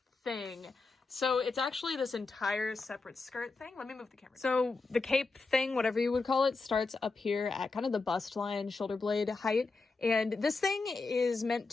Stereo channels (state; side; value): quieter; right; 3.9 dB